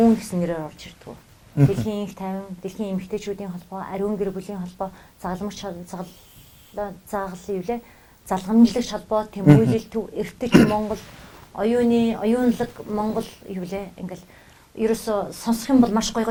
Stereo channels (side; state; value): both; identical; correlation 1.00